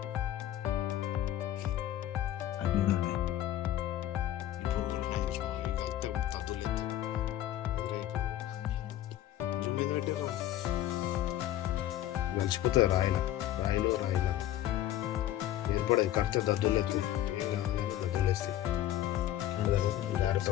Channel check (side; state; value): right; quieter; 13.0 dB